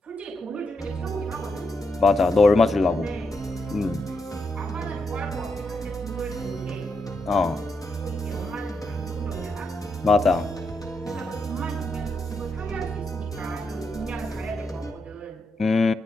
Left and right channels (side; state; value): both; normal; correlation 0.82